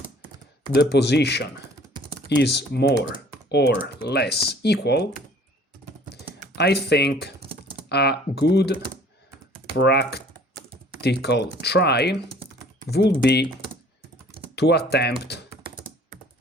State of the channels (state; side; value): normal; both; correlation 0.53